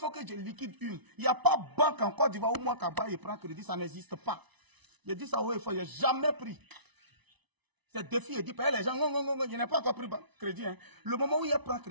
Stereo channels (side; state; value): left; late; 1.0 ms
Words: que je liquide une. Il n'y a pas banque en Côte d'Ivoire où moi, Kaba, il prend crédit, ça n'existe pas. Je dis ça, oui, il n'ai jamais pris. C'est défi, il dit, les gens, non, je n'ai pas encore pris crédit. Hein. Le moment où il prend